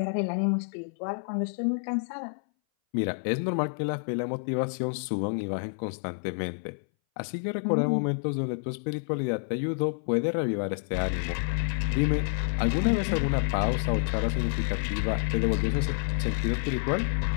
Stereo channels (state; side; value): silent; right; 59 dB below the other